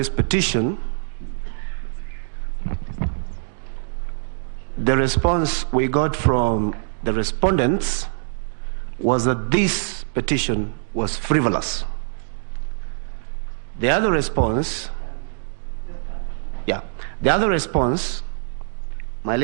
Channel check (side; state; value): left; silent; digital silence